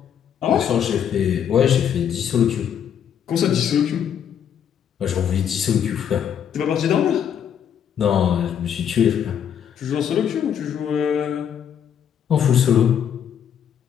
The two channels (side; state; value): right; quieter; 8.7 dB